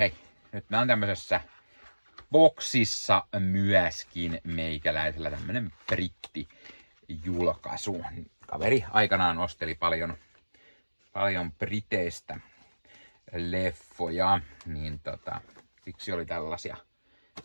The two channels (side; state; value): both; inverted; correlation -1.00